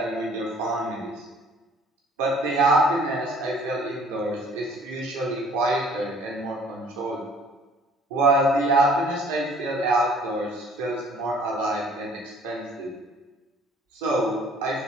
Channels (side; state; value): both; normal; correlation 0.55